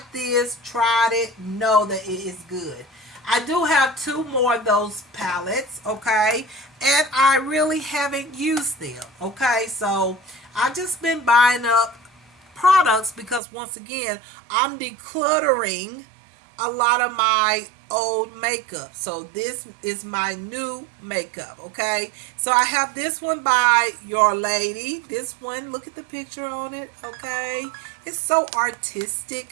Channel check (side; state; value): left; drops out; at 13.4 s